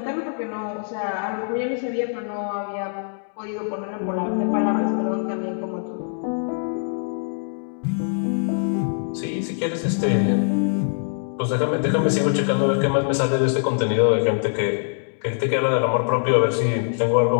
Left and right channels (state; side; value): silent; right; digital silence